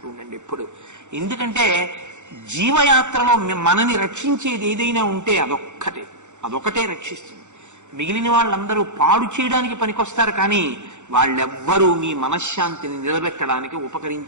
ఉండండి ఎప్పుడు. ఎందుకంటే జీవయాత్రలో మనని రక్షించేది ఏదైనా ఉంటే అదొకటే రక్షిస్తుంది. మిగిలిన వాళ్ళందరూ పాడు చేయడానికి పనికొస్తారు, కానీ వాళ్ళెవ్వరూ మీ మనశ్శాంతిని నిలబెట్టడానికి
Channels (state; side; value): late; left; 0.84 ms